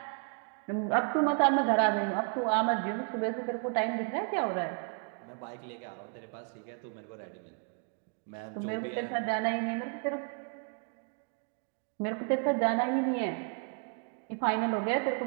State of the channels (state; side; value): quieter; left; 38.8 dB